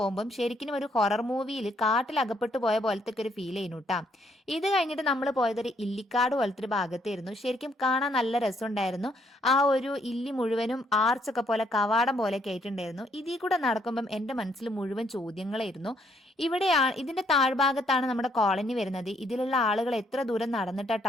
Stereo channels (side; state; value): both; normal; correlation 0.70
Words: ശരിക്കും ഒരു ഹൊറർ മൂവിയിൽ കാട്ടിൽ അകപ്പെട്ടു പോയ പോലത്തെ ഒരു ഫീൽ ചെയ്യുന്നു കേട്ടാ. ഇത് കഴിഞ്ഞിട്ട് നമ്മൾ പോയതൊരു ഇല്ലിക്കാട് പോലത്തെ ഒരു ഭാഗത്തായിരുന്നു. ശരിക്കും കാണാൻ നല്ല രസമുണ്ടായിരുന്നു. ആ ഒരു ഇല്ലി മുഴുവനും ആർച്ചൊക്കെ പോലെ കവാടം പോലെയൊക്കെ ആയിട്ടുണ്ടായിരുന്നു. ഇതിൽ കൂടെ നടക്കുമ്പം എൻ്റെ മനസ്സിൽ മുഴുവൻ ചോദ്യങ്ങളായിരുന്നു. ഇതിന്റെ താഴ്ഭാഗത്താണ് നമ്മുടെ കോളനി വരുന്നത്. ഇതിലുള്ള ആളുകൾ എത്ര ദൂരം നടന്നിട്ടാ